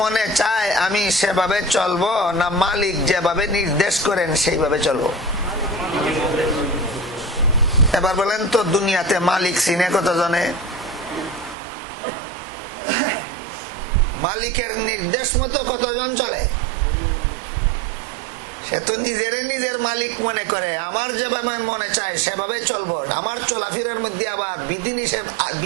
মনে চায় আমি সেভাবে চলবো, না মালিক যেভাবে নির্দেশ করেন সেইভাবে চলবো? এবার বলেন তো, দুনিয়াতে মালিক চিনে কতজনে? মালিকের নির্দেশ মতো কতজন চলে? সে তো নিজের মালিক মনে করে, আমার যেভাবে মনে চায় সেভাবে চলবো। আমার চলাফেরার মধ্যে আবার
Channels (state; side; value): drops out; left; at 11.6 s